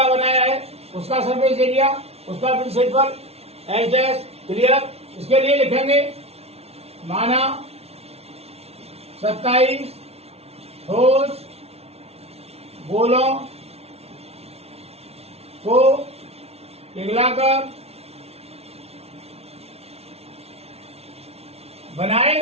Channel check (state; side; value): late; left; 0.30 ms